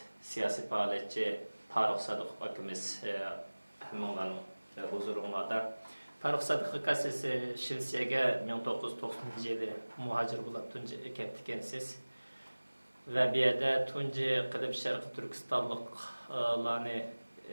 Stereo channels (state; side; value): inverted; both; correlation -1.00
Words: siyasi fəaliyyətçi Farruq Sadiq akimiz həminlərin huzurunda. Farruq Sadiq siz Şivisiyaga 1990 yılı muhacir bo'lib tunji ketdikansiz va bu yerda tunji qilib Sharq Turkistonliklarni